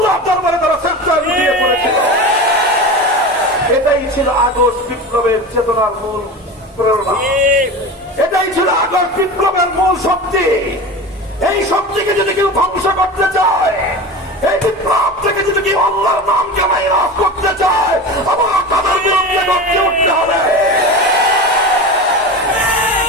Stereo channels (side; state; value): both; normal; correlation 0.29